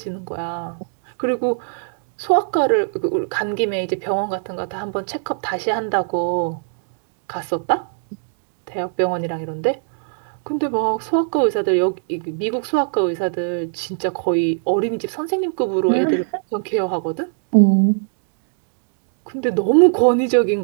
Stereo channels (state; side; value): silent; left; digital silence